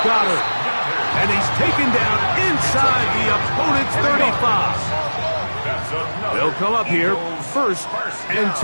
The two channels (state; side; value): inverted; both; correlation -1.00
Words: Goddard. And he's taken down inside the opponent's 35. They'll come up here, first and